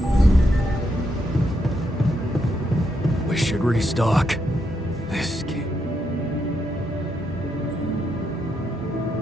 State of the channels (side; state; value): both; normal; correlation 0.80